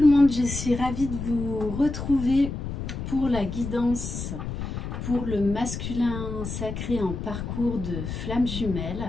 monde, je suis ravie de vous retrouver pour la guidance pour le masculin sacré en parcours de flamme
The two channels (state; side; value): noise; left; rumble, 6 dB below the sound